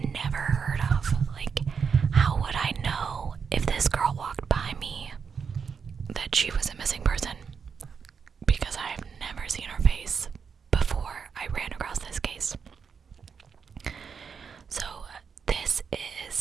never heard of. Like, how would I know if this girl walked by me that she was a missing person? Because I have never seen her face before I ran across this case. So this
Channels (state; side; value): quieter; left; 6.2 dB